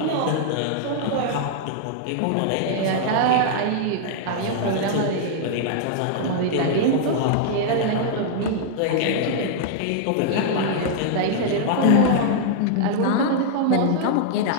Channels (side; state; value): both; different; correlation -0.01